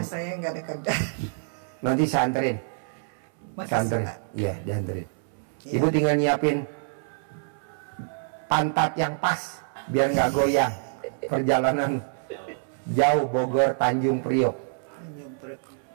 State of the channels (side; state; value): left; silent; 60 dB below the other